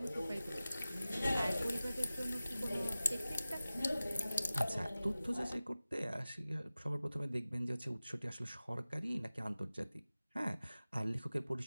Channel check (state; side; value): inverted; both; correlation -0.97